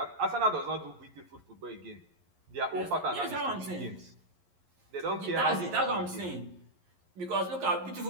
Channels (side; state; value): left; late; 11 ms